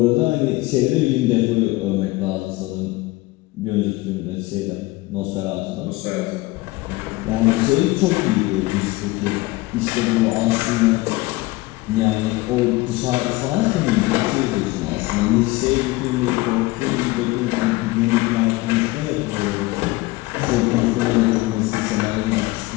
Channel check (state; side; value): quieter; right; 20.4 dB